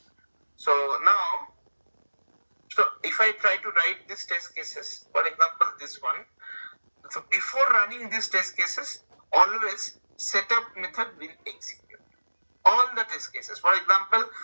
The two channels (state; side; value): inverted; both; correlation -1.00